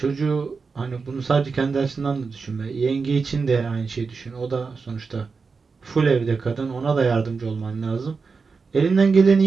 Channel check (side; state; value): left; quieter; 4.8 dB